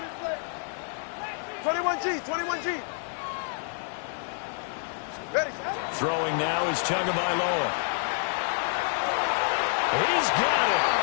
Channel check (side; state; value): right; silent; 59 dB below the other